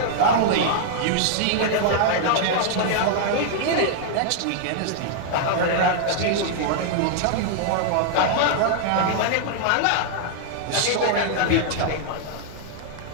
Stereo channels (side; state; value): both; different; correlation -0.01